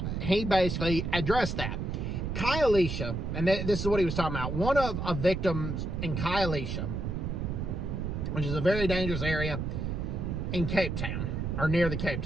he basically addressed that. Khayelitsha, and this is what he was talking about, one of the victims in Khayelitsha, which is a very dangerous area in Cape Town, or near the Cape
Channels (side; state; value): right; noise; rumble, 3 dB below the sound